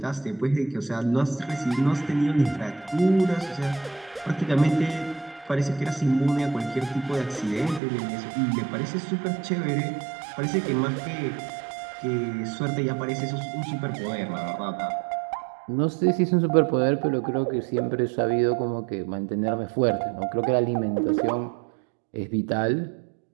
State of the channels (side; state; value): left; drops out; at 7.8 s